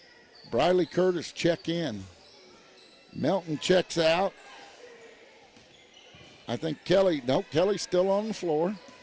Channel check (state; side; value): identical; both; correlation 1.00